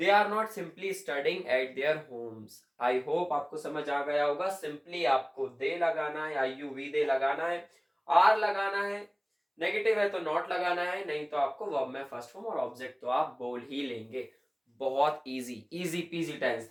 are not simply studying at their homes. I hope आपको समझ आ गया होगा। सिंपली आपको दे लगाना है, आई यू वी दे लगाना है, आर लगाना है, नेगेटिव है तो नॉट लगाना है, नहीं तो आपको वर्ब में फर्स्ट फॉर्म और ऑब्जेक्ट तो आप बोल ही लेंगे। बहुत इजी इजी पीजी टेंस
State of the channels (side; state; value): both; identical; correlation 1.00